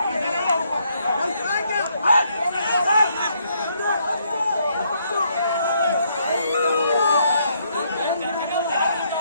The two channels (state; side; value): inverted; both; correlation -0.72